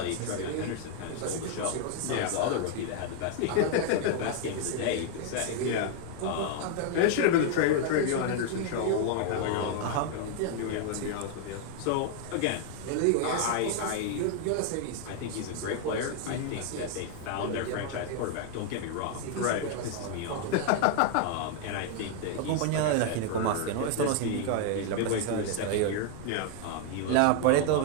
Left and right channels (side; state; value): both; different; correlation 0.00